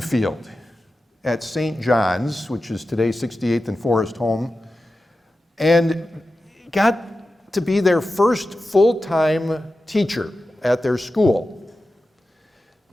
at St. John's, which is today 68th and Forest Home, and got to be their first full-time teacher at their school.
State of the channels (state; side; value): normal; both; correlation 0.93